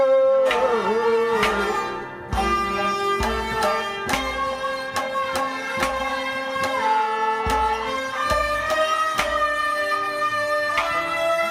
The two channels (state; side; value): identical; both; correlation 1.00